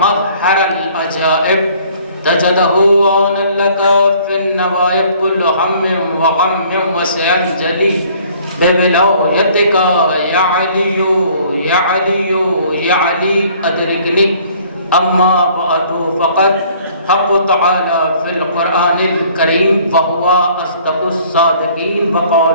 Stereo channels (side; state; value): both; inverted; correlation -0.56